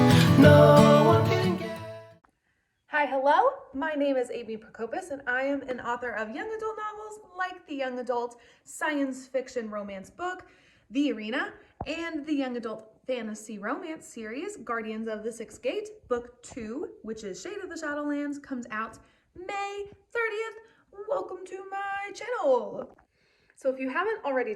no one can get. Hi, hello. My name is Amy Prokopis, and I am an author of young adult novels like the young adult science fiction romance book, The Arena, and the young adult fantasy romance series, Guardians of the Sixth Gate. Book 2, which is Shade of the Shadowlands, comes out May 30th. Welcome to my channel. So if you haven't already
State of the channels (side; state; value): both; identical; correlation 1.00